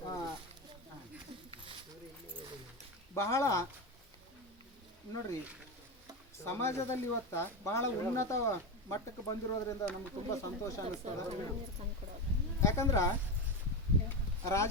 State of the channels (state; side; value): normal; both; correlation 0.16